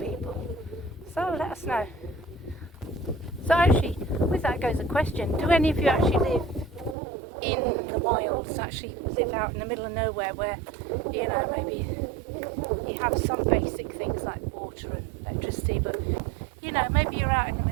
So let us know. So actually, with that goes a question. Do any of you actually live in the wilds, actually live out in the middle of nowhere, where, you know, maybe you have some basic things like water and electricity, but, you know, maybe you're out in the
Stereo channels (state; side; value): drops out; left; at 7.0 s